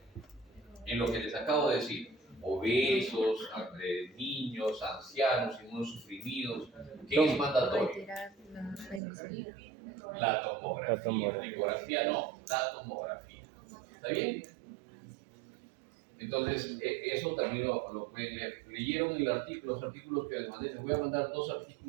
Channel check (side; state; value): left; drops out; at 9.0 s